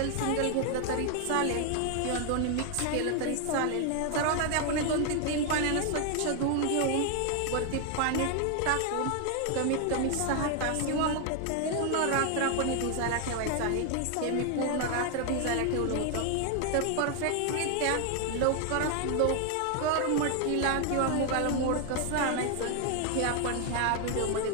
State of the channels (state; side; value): different; both; correlation 0.00